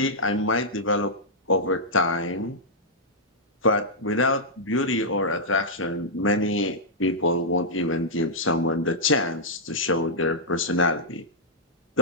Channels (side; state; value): both; normal; correlation -0.09